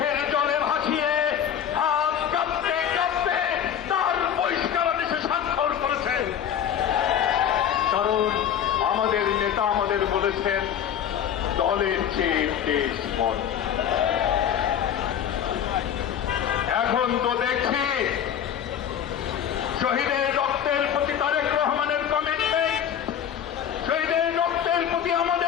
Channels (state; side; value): quieter; right; 9.2 dB